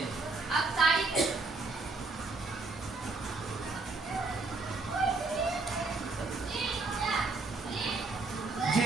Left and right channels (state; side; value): quieter; left; 3.6 dB